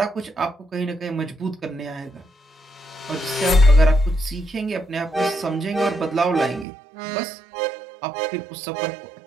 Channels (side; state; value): left; drops out; at 6.7 s